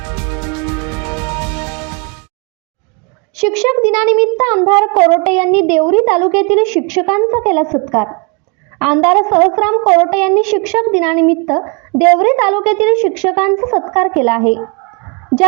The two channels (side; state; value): left; quieter; 33.3 dB